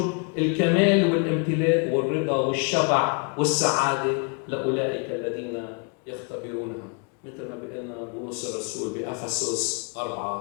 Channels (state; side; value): quieter; right; 36.4 dB